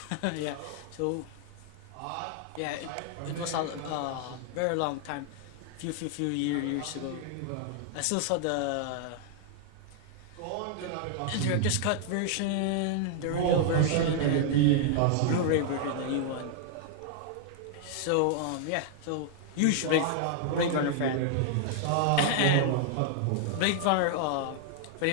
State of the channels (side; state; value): both; different; correlation 0.00